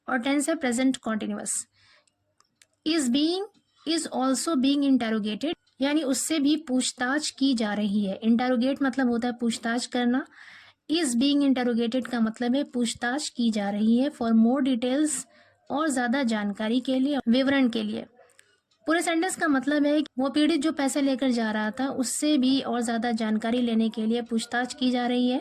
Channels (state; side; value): identical; both; correlation 1.00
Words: और टेंस है present continuous. Is also being interrogated यानी उससे भी पूछताछ की जा रही है। इंटरोगेट मतलब होता है पूछताछ करना, इज बीइंग इंटरोगेटेड का मतलब है पूछताछ की जा रही है। फॉर मोर डिटेल्स, और ज्यादा जानकारी के लिए, विवरण के लिए। पूरे सेंटेंस का मतलब है कि वो पीड़ित जो पैसे लेकर जा रहा था उससे भी और ज्यादा जानकारी लेने के लिए पूछताछ की जा रही है।